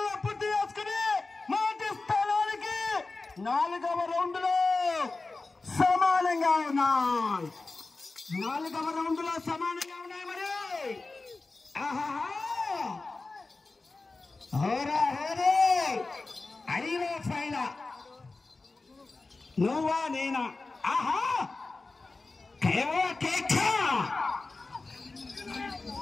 పూర్తి చేసుకుని మొదటి స్థానానికి 4వ రౌండ్ లో సమానంగా ఉన్నాయి. 4వ రౌండ్ లో సమానంగా ఉన్నాయి. మరి అడిలో ఫైన నువ్వా నేనా?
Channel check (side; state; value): right; quieter; 3.6 dB